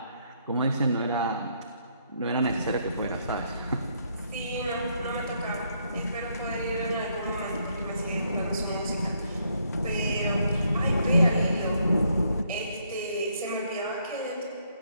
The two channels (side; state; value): both; inverted; correlation -0.72